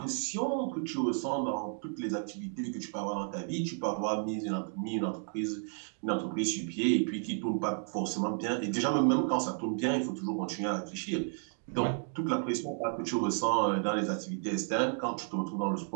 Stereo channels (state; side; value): silent; left; 56 dB below the other